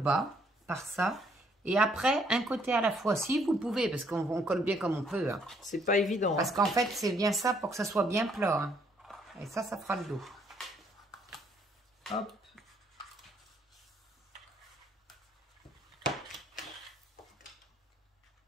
par ça. Et après, un côté à la fois, si vous pouvez, parce qu'on colle bien comme on peut. Hein. C'est pas évident. Parce qu'en fait, c'est bien ça pour que ça soit bien plat. Hein. Et ça fera le dos. Hop.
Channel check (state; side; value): normal; both; correlation 0.68